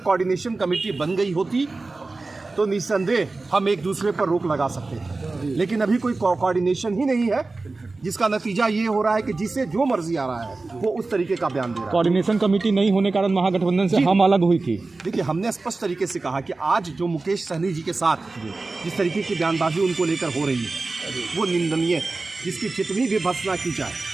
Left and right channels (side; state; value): left; quieter; 3.5 dB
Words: कमेटी बन गई होती तो निस्संदेह हम एक दूसरे पर रोक लगा सकते थे, लेकिन अभी कोई कोऑर्डिनेशन ही नहीं है, जिसका नतीजा ये हो रहा है कि जिसे जो मर्जी आ रहा है वो उस तरीके का बयान दे रहा है। कोऑर्डिनेशन कमेटी नहीं होने के कारण महागठबंधन से हम अलग हुई थी। देखिए, हमने स्पष्ट तरीके से कहा कि आज जो मुकेश सहनी जी के साथ जिस तरीके की बयानबाजी उनको लेकर हो रही है वो निंदनीय है, जिसकी जितनी भी भर्त्सना की जाए